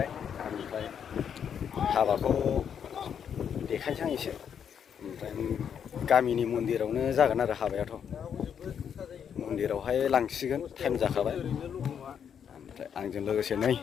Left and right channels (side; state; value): right; quieter; 8.0 dB